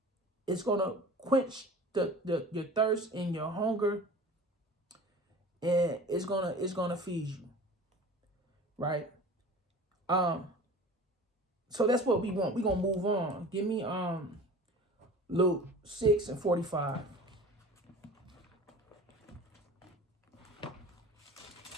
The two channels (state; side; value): normal; both; correlation 0.40